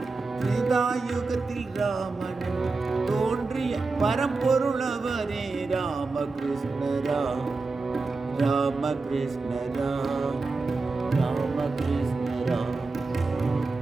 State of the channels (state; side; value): quieter; left; 3.8 dB